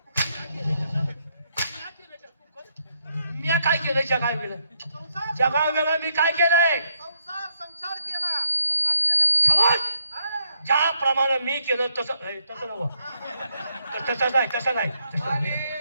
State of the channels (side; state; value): both; inverted; correlation -0.75